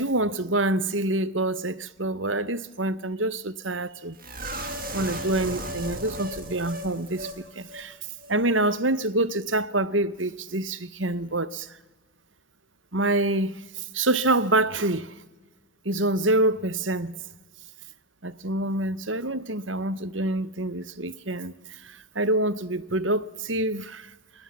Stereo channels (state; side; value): normal; both; correlation 0.05